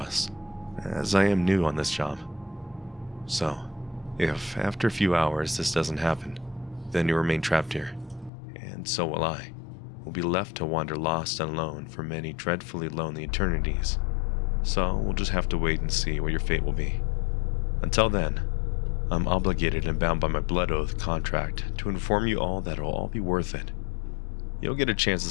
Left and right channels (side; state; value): right; drops out; at 8.3 s